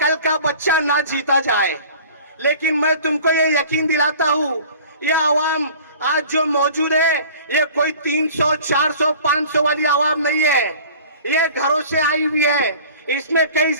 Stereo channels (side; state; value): both; inverted; correlation -0.45